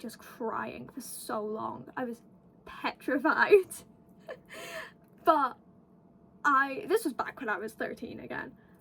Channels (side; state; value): both; identical; correlation 1.00